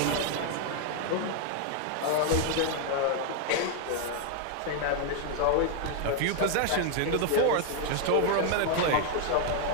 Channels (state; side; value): different; both; correlation 0.00